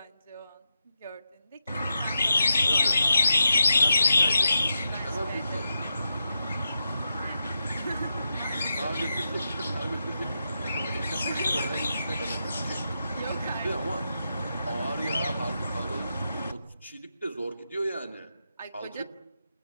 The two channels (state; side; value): inverted; both; correlation -0.87